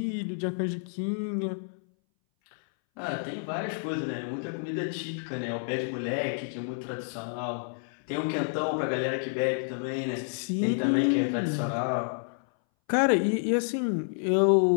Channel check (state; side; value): silent; right; 58 dB below the other